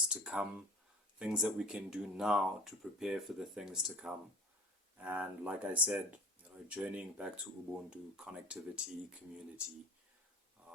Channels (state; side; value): normal; both; correlation 0.41